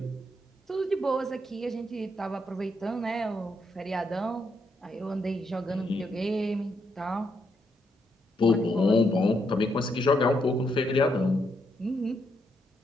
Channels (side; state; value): both; normal; correlation 0.78